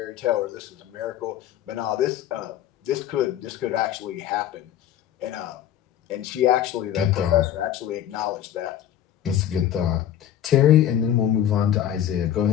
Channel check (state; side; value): quieter; right; 10.9 dB